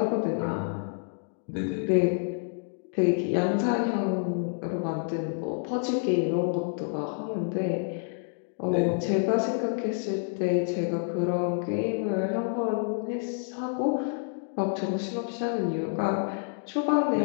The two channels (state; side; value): silent; right; digital silence